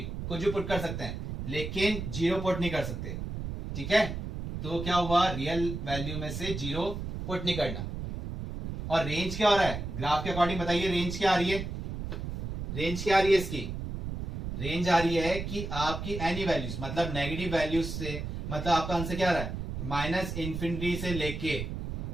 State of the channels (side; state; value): right; noise; rumble, 6 dB below the sound